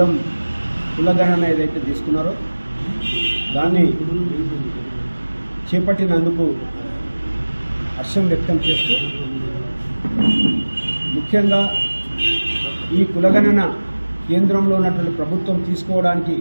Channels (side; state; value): both; inverted; correlation -1.00